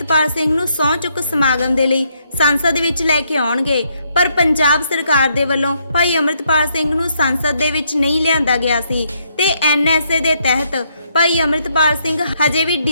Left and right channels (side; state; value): both; inverted; correlation -0.74